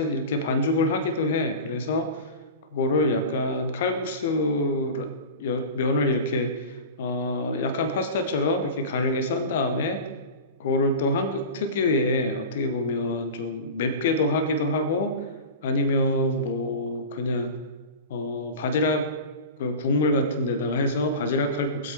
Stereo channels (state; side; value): inverted; both; correlation -0.31